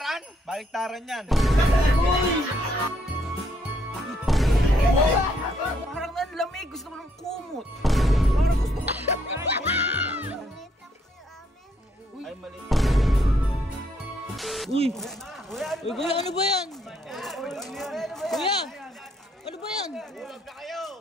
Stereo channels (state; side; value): normal; both; correlation 0.71